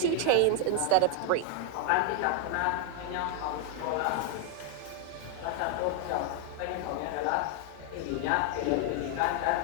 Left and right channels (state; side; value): different; both; correlation 0.00